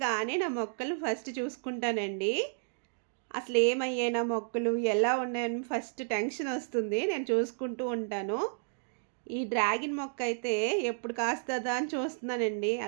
నా మొక్కలు ఫస్ట్ చూసుకుంటానండి. అసలేమయ్యాయి నా మొక్కలు, ఎలా ఉన్నాయని ఫస్ట్ టెన్షన్ వస్తుంది. నేను చూసుకుంటూ ఉంటాను. ఈ డ్రాగన్ మొక్క అయితే ఎప్పుడు కాస్తదా అని చూస్తున్నానండి.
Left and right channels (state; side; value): silent; left; digital silence